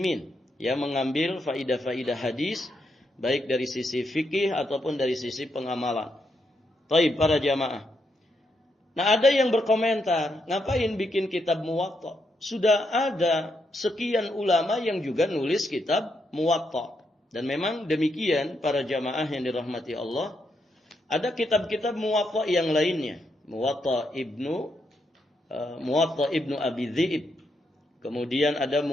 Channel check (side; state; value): both; normal; correlation 0.80